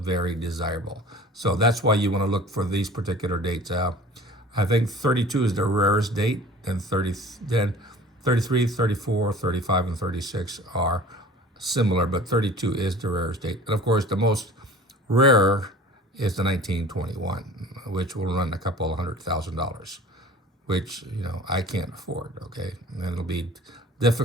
desirable. So that's why you want to look for these particular dates. I think 32 is the rarest date, then 33, 34, 35, and 36 are similar, but 32 is the rarest date. And of course, the most rare is the 1921, which will run a couple $100,000, which, you know, I can't afford, okay? And it'll be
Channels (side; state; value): both; normal; correlation 0.44